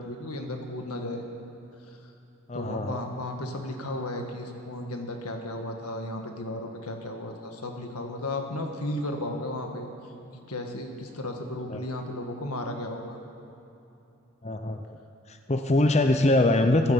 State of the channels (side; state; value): both; normal; correlation 0.54